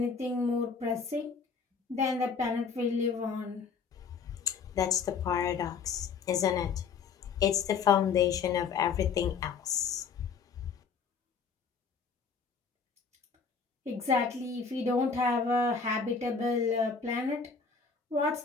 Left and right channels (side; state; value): right; quieter; 5.6 dB